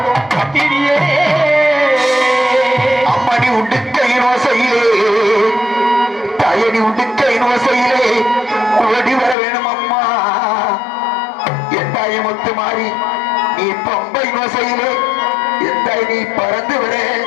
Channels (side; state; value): right; drops out; at 9.3 s